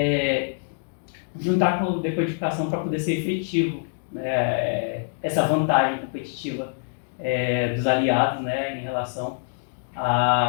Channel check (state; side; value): silent; right; digital silence